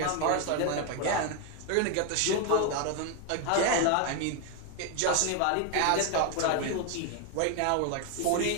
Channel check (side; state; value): both; different; correlation 0.01